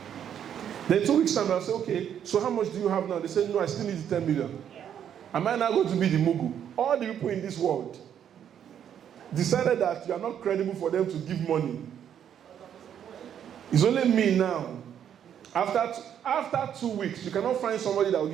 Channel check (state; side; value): quieter; left; 9.3 dB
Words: Then 2 weeks' time, I'll say, okay, so how much do you have now? They say, no, I still need 10 million. Am I now going to be the Mugu? All the people in this world decided that you are not credible for them to give money. It's only me now. After 2 weeks, you cannot find somebody that will